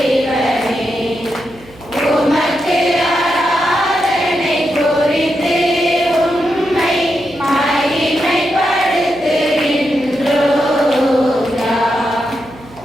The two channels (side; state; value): right; noise; hum, 23 dB below the sound